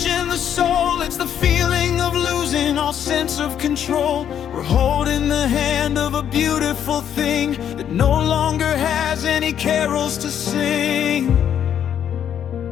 in the soul, it's the feeling of losing all sense of control. We're holding the hand of a beautiful thing that no longer has any carols to sing.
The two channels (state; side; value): quieter; right; 9.3 dB